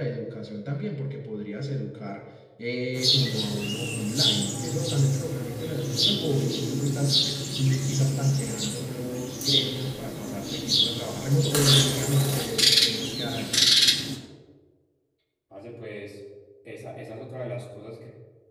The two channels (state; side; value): identical; both; correlation 1.00